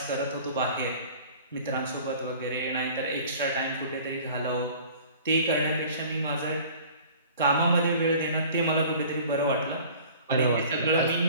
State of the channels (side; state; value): both; inverted; correlation -0.46